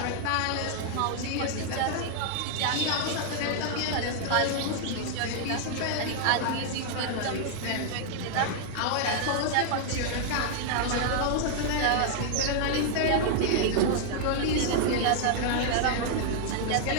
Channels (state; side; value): different; both; correlation 0.00